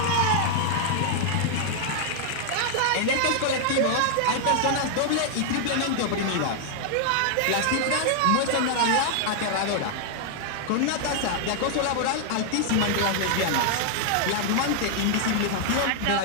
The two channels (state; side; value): different; both; correlation 0.00